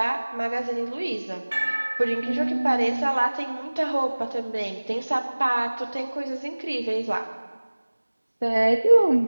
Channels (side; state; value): both; inverted; correlation -1.00